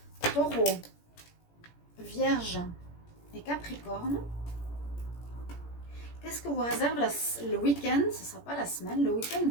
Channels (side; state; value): right; late; 17 ms